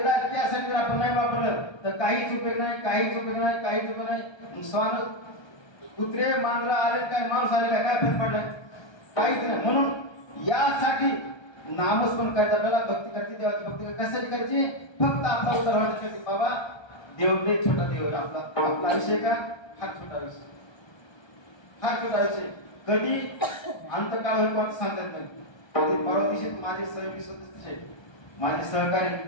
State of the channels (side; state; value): right; late; 1.3 ms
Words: त्यासाठी आपण नाही वापरलं तर काहीच उपयोग नाही, काहीच उपयोग नाही, काहीच उपयोग नाही. स्वान कुत्रे मांजरा आले काय, माणूस आले काय फरक पडलाय? काहीच नाही. म्हणून यासाठी नामस्मरण करायचं, आपल्याला भक्ती करते, देवाची भक्ती कशासाठी करायची? फक्त आपला उद्धार व्हायचा. बाबा देव लय छोटा देव, आपला आयुष्य का फार छोटा आयुष्य, फार छोटा आयुष्य. कधी अंतकाळ होईल कोणतं सांगता येत नाही. कधी परवा दिवशी माझे सहयोगी सदस्य, माझे सहकारी